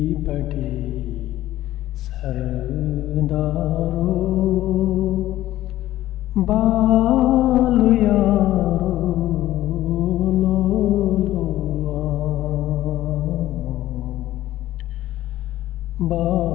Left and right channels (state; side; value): quieter; right; 14.7 dB